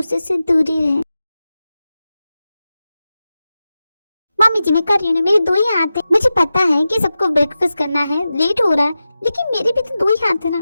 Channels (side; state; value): both; inverted; correlation -0.93